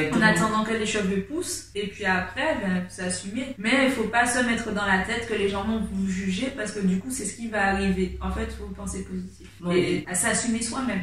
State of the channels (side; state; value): both; identical; correlation 1.00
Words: en attendant que les cheveux poussent, et puis après, ben, vous assumez. Mais il faut pas se mettre dans la tête que les gens vont vous juger, parce que du coup, c'est ce qui va arriver. En fait, il faut penser positif. Et à s'assumer